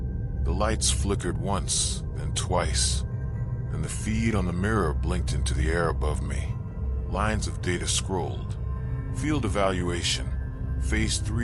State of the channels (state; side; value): identical; both; correlation 1.00